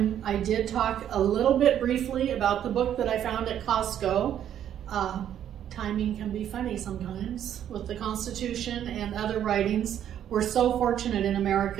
I did talk a little bit briefly about the book that I found at Costco. Timing can be funny sometimes with the Constitution and other writings. We're so fortunate in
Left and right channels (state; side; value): quieter; left; 10.2 dB